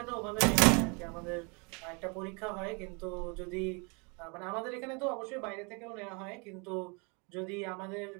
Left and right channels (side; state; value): left; quieter; 32.2 dB